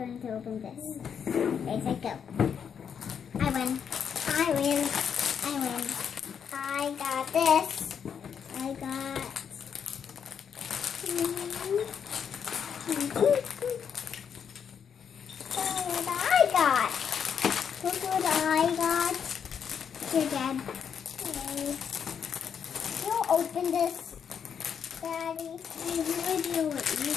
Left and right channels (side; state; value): right; quieter; 7.5 dB